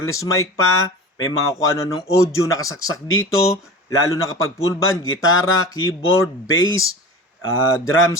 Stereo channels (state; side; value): normal; both; correlation 0.35